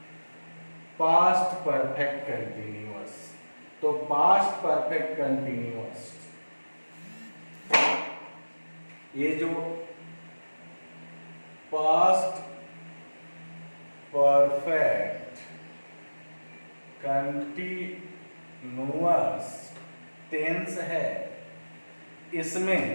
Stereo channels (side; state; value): both; inverted; correlation -1.00